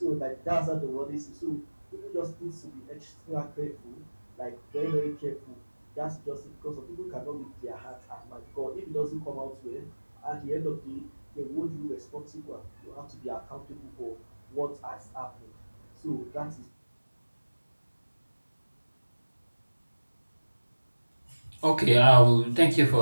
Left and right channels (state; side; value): inverted; both; correlation -1.00